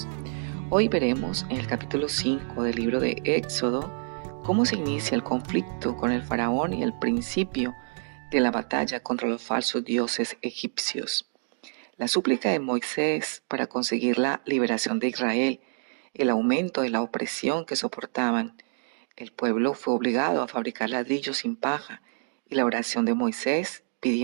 Hoy veremos en el capítulo 5 del libro de Éxodo cómo se inicia el conflicto con el faraón y el principio de la batalla contra los falsos dioses egipcios. La súplica de Moisés para conseguir la liberación de Israel, el aumento de la opresión que soportaban. El pueblo fue obligado a fabricar ladrillos sin paja y la oración de Moisés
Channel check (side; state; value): left; silent; digital silence